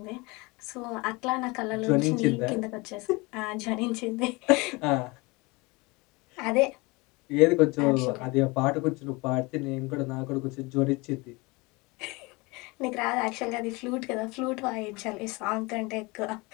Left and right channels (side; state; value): right; quieter; 25.1 dB